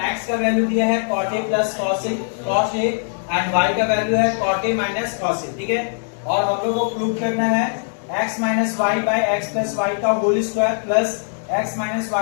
x का वैल्यू दिया है cot a plus cos a and y का वैल्यू है cot a minus cos a। ठीक है, और हम लोग को प्रूव करना है x minus y by x plus y का whole square plus x minus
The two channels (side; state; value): right; silent; 65 dB below the other